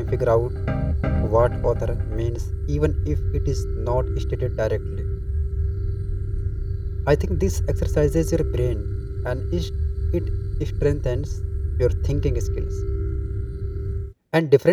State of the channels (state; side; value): identical; both; correlation 1.00